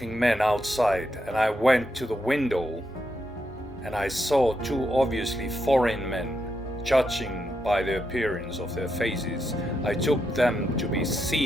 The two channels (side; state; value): both; normal; correlation 0.82